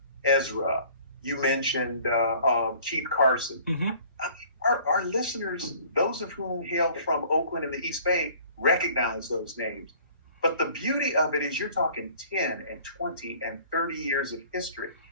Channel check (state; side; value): inverted; both; correlation -0.52